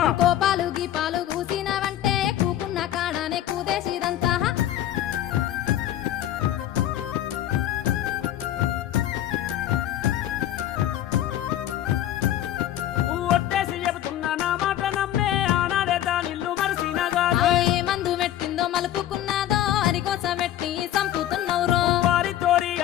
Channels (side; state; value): right; quieter; 12.2 dB